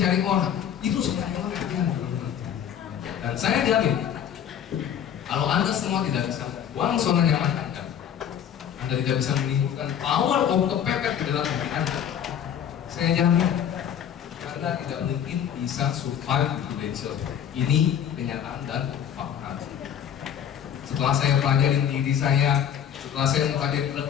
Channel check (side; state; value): right; quieter; 9.1 dB